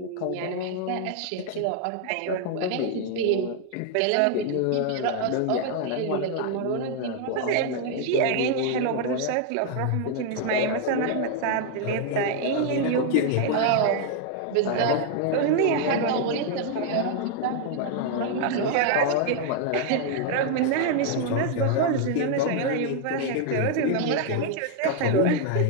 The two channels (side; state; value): both; different; correlation 0.00